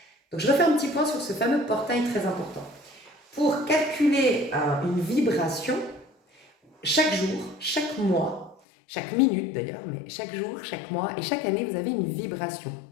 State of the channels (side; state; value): right; drops out; at 8.6 s